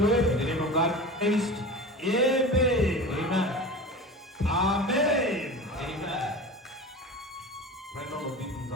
The name of God praised. Amen. Amen. Amen. Amen. Prenons nos Bibles, nous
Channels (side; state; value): both; normal; correlation 0.32